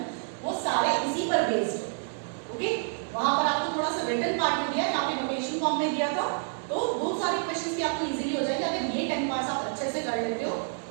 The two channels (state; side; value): silent; left; 59 dB below the other